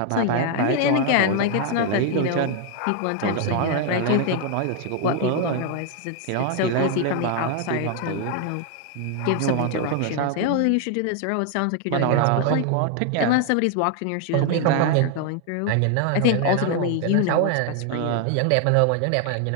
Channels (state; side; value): different; both; correlation 0.00